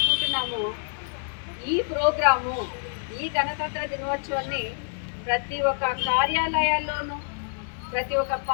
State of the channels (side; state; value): right; silent; digital silence